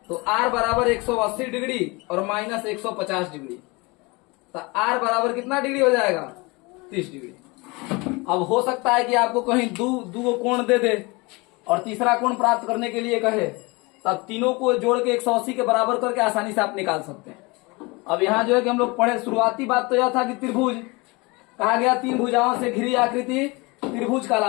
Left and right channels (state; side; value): quieter; right; 25.9 dB